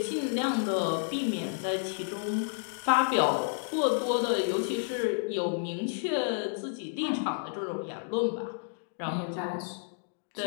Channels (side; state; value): right; silent; digital silence